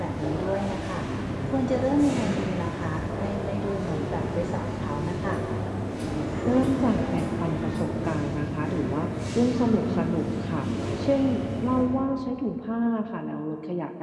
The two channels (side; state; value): both; identical; correlation 1.00